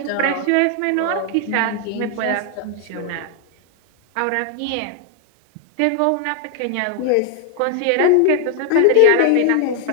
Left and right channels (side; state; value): both; different; correlation 0.00